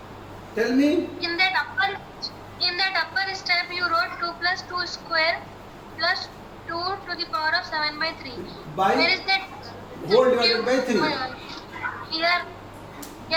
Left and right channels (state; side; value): identical; both; correlation 1.00